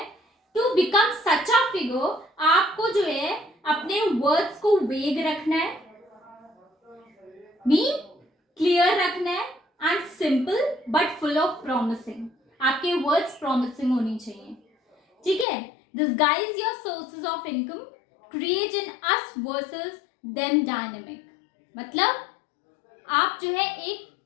to become such a figure, आपको जो है अपने वर्ड्स को वेग रखना है, मीन क्लियर रखना है, and simple but full of promising. आपके वर्ड्स प्रॉमिसिंग होनी चाहिए. ठीक है. Disguise your sources of income, create in us versus them dynamic. मतलब आप जो है एक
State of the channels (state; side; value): drops out; right; at 15.5 s